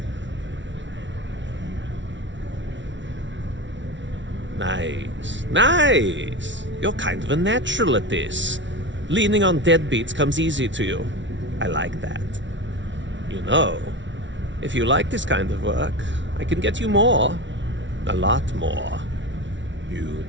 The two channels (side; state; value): left; late; 0.55 ms